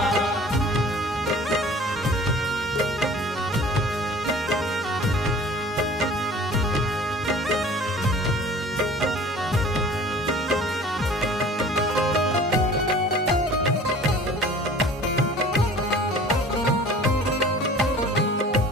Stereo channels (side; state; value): both; normal; correlation 0.46